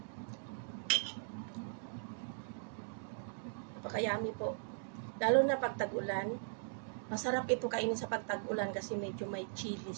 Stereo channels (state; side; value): silent; left; digital silence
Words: Napaka-yummy po. Lalo na pag tag-ulan. Masarap ito kainin sa pagtag-ulan kasi medyo may chili